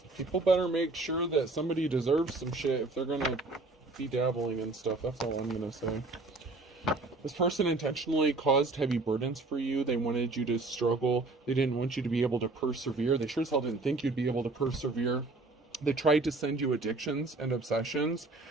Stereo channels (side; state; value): left; quieter; 3.3 dB